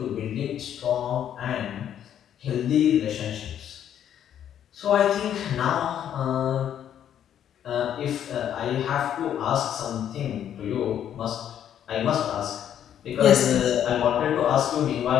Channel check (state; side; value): quieter; right; 9.9 dB